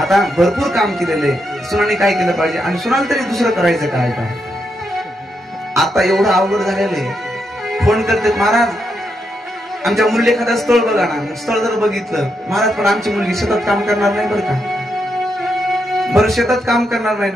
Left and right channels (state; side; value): normal; both; correlation 0.82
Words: भरपूर काम केलेले, सुनाने काय केलं पाहिजे, आणि सुनाला तरी दुसरं करायचं काय. आता एवढं अवघड झालेलं आहे. फोन करते, महाराज आमच्या मुलीला एखादं स्थळ बघा ना. स्थळ जर बघितलं, महाराज पण आमची मुलगी शेतात काम करणार नाही बरं का, बरं शेतात काम करणार